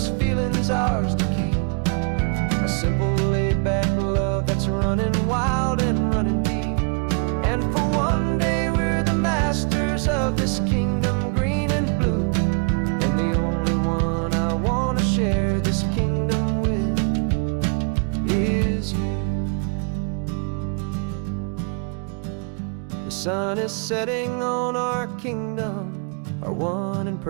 feeling's ours to keep. A simple laid-back love that's running wild and running deep. And for one day we're the masters of this kingdom green and blue, and the only one I wanna share this kingdom with is you. The sun is setting on our kingdom, our one and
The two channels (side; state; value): left; quieter; 39.2 dB